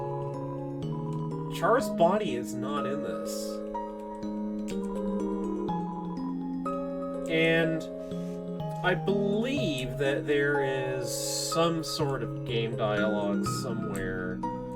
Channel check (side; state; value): both; identical; correlation 1.00